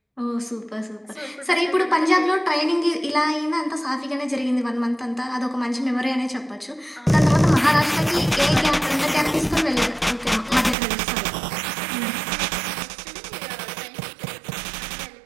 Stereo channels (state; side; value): drops out; left; at 10.8 s